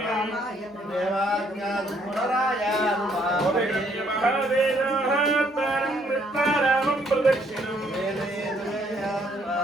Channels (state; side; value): normal; both; correlation 0.67